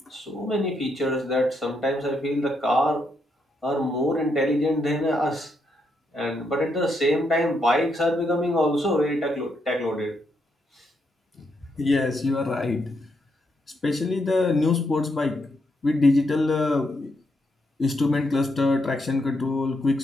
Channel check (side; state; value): both; normal; correlation 0.79